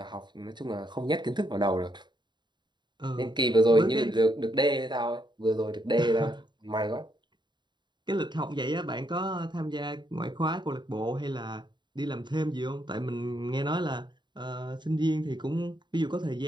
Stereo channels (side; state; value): left; late; 0.22 ms